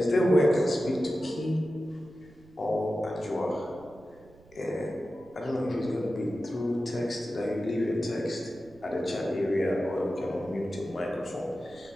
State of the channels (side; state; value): right; noise; rumble, 26 dB below the sound